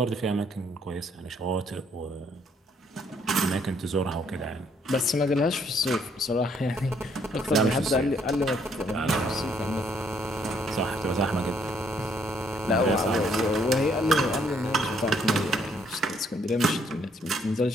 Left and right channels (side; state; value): both; normal; correlation 0.68